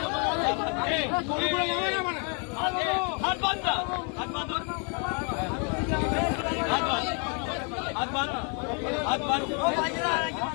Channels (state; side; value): quieter; right; 38.7 dB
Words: হাত বাঁধ না, হাত বাঁধ, হাত বাঁধ, হাত বাঁধ, হাত বাঁধ,